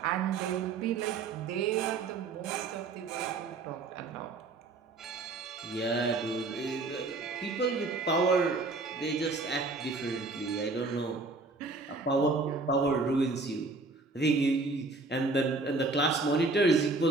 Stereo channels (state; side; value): quieter; left; 3.6 dB